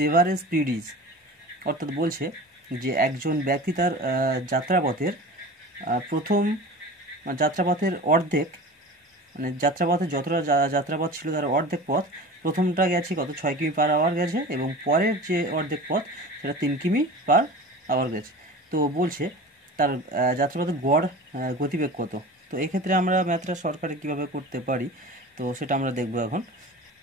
average speed is. অর্থাৎ বলছে যে একজন ব্যক্তি তার যাত্রাপথের অর্ধেক, মানে যাত্রাপথে যতটা যাত্রাপথ ছিল তার অর্ধেক পথ প্রথমটা গেছে কত 6 কিমি পার আওয়ার গেছে, এবং পরের যে অর্ধেক পথ সেটা 3 কিমি পার আওয়ার গেছে। তো বলছে তার যাত্রাপথের গড় গতিবেগ কত। তো এক্ষেত্রে আমরা ম্যাথটা শর্টকাটে কীভাবে করতে পারি, তো সেটা আমরা দেখব এখন।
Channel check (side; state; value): both; normal; correlation 0.35